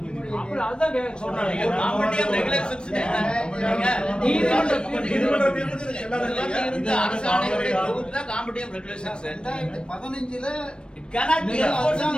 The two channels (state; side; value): late; right; 0.054 ms